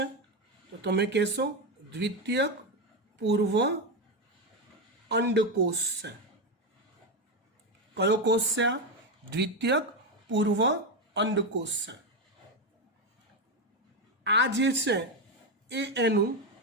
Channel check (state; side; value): normal; both; correlation 0.10